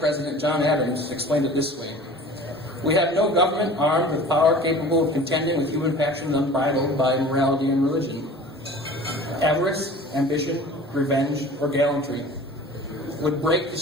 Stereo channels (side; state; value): both; normal; correlation 0.42